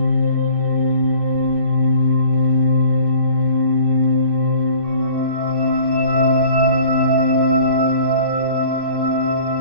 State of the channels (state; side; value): late; left; 2.6 ms